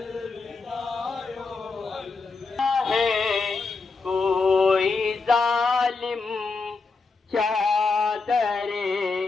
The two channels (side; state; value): right; quieter; 4.3 dB